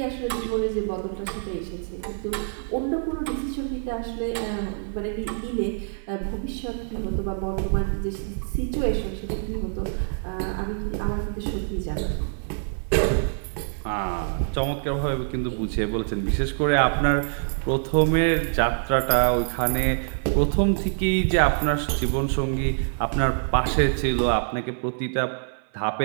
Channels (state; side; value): silent; left; 56 dB below the other